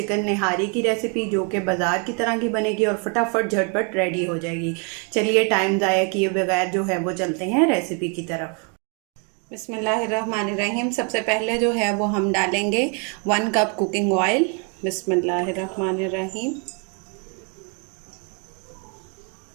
निहारी की रेसिपी, जो कि बाज़ार की तरह की बनेगी और फटाफट झटपट रेडी हो जाएगी। चलिए टाइम ज़ाया किए बगैर जो है वो चलते हैं रेसिपी की तरफ। बिस्मिल्लाहिर्रहमानिर्रहीम। सबसे पहले जो है वो हम डालेंगे 1 कप कुकिंग ऑयल। बिस्मिल्लाहिर्रहमानिर्रहीम।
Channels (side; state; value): left; quieter; 36.9 dB